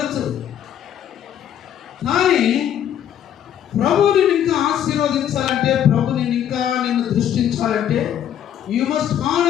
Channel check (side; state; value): right; quieter; 10.1 dB